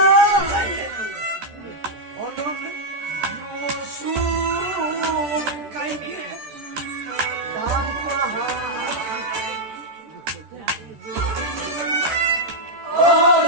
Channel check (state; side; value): late; left; 14 ms